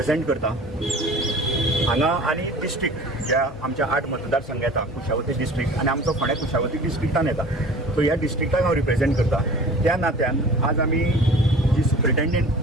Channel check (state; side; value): normal; both; correlation 0.43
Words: करता हांगा आनी डिस्ट्रिक्ट ज्या आमच्या 8 मतदारसंघ येता, कुशावती डिस्ट्रिक्ट आनी आमचो फोंड्या कुशावती डिस्ट्रिक्टान येता, सो ह्या डिस्ट्रिक्टाक हांव रिप्रेझेंट करता. त्या नात्यान आज आमी जी